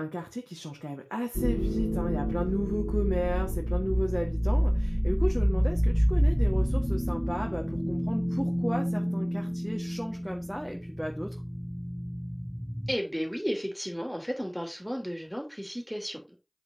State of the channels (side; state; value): both; identical; correlation 1.00